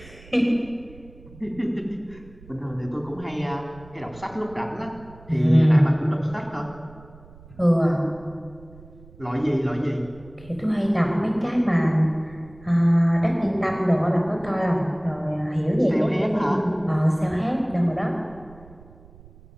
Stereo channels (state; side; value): noise; right; rumble, 22 dB below the sound